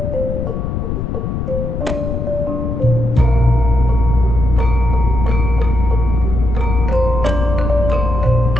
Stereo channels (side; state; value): left; noise; rumble, 3 dB below the sound